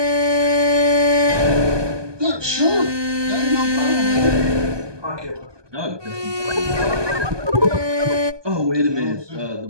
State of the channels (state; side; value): late; left; 1.2 ms